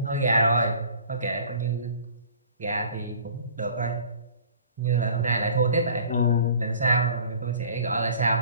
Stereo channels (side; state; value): both; inverted; correlation -0.49